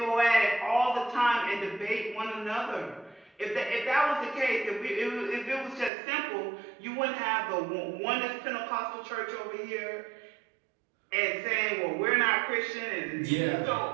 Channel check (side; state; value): left; drops out; at 5.9 s